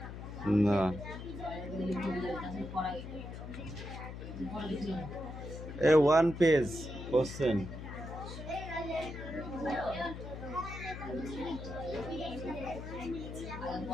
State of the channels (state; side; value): noise; left; hum, 9 dB below the sound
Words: না এ 1 পেজ কোশ্চেন।